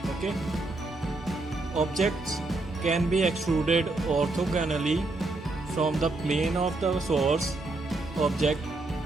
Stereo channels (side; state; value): left; quieter; 3.0 dB